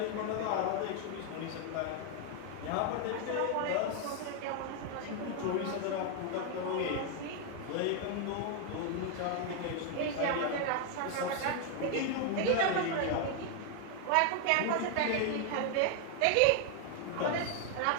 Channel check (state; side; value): different; both; correlation 0.00